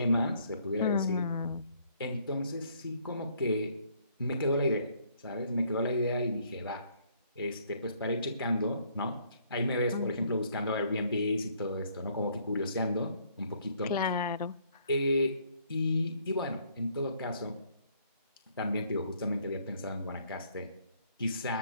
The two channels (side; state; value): both; inverted; correlation -0.65